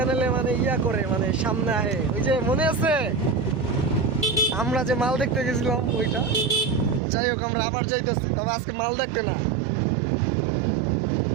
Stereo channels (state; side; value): drops out; left; at 7.0 s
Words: মানে ইয়া করে মানে সামনে আহে, ওই যে মনে আছে আমরা যে মাল দেখতে গেছিলাম ওইটা। যাই হোক আমরা আবার যাইতেছি, তবে আজকে মাল দেখতে না,